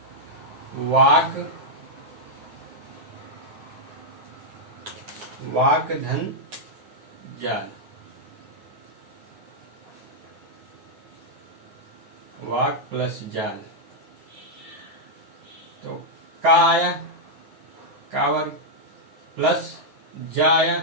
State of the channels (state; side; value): late; left; 9.4 ms